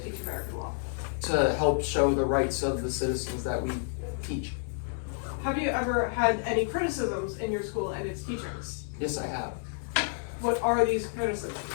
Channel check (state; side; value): silent; right; 58 dB below the other